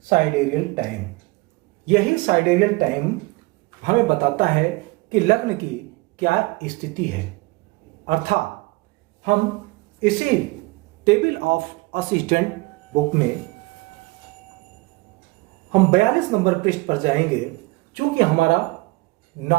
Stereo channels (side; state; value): left; quieter; 23.8 dB